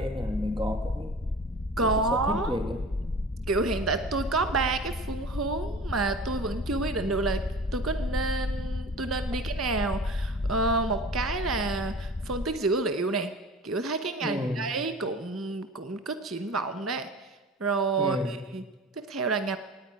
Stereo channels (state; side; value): normal; both; correlation 0.39